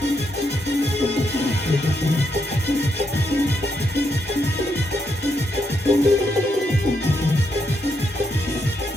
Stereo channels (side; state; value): both; normal; correlation 0.79